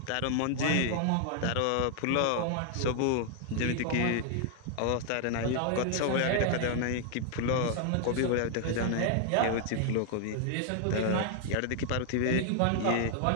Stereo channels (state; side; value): different; both; correlation 0.00